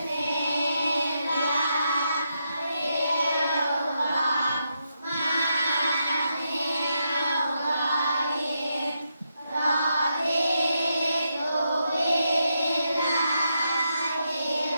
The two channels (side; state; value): both; inverted; correlation -0.82